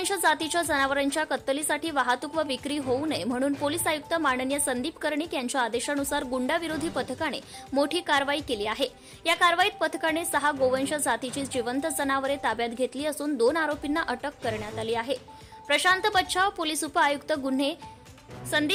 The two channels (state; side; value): identical; both; correlation 1.00